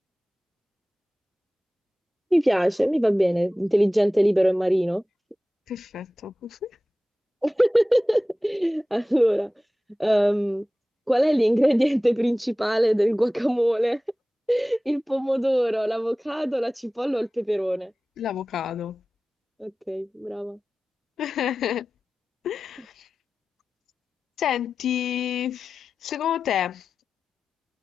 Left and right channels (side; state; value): both; normal; correlation 0.96